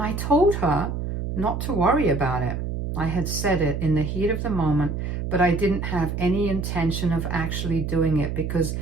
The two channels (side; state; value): right; noise; hum, 4 dB below the sound